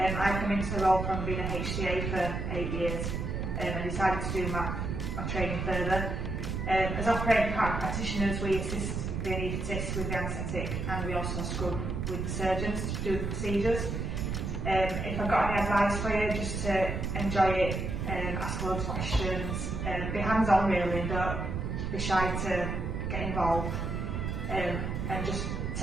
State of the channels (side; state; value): right; noise; rumble, 2 dB below the sound